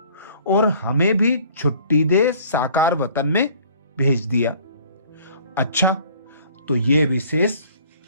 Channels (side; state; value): both; inverted; correlation -0.53